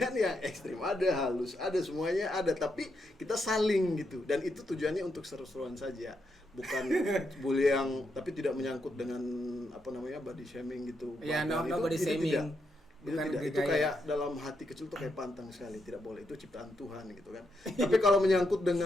yang ekstrim ada, halus ada, semuanya ada, tapi kita saling gitu dan itu tujuannya untuk seru-seruan saja, bukan bully yang tapi tidak menyangkut dengan apa namanya body shaming gitu. Ya, Bahkan no body shaming. Itu Bukan tidak, itu gaya. kayak dalam hati kecil tuh kayak pantang sekali, tidak boleh, itu ciptaan Tuhan gitu kan. Tapi kalau menyangkut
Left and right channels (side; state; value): both; normal; correlation 0.81